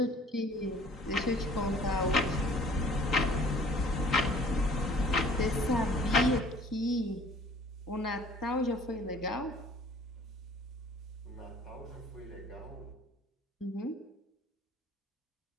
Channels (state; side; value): normal; both; correlation 0.53